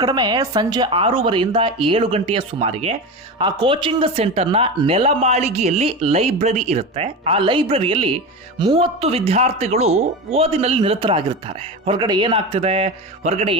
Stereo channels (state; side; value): normal; both; correlation 0.23